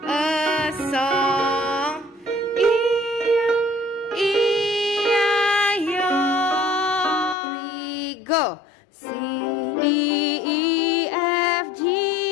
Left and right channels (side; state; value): right; drops out; at 7.4 s